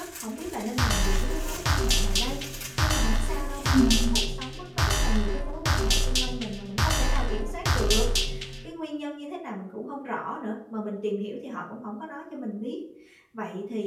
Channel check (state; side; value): identical; both; correlation 1.00